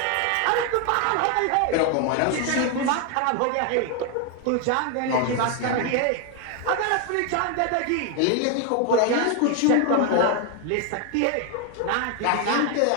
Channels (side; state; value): both; different; correlation 0.01